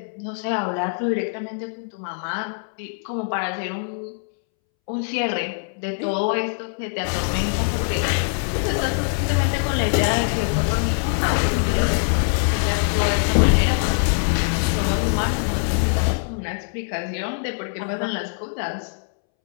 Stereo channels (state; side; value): silent; right; 63 dB below the other